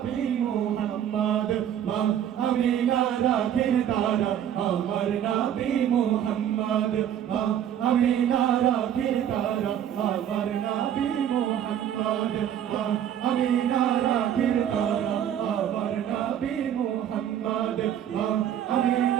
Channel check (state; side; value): quieter; left; 10.0 dB